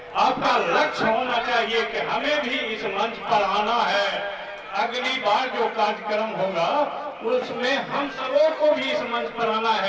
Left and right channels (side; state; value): both; identical; correlation 1.00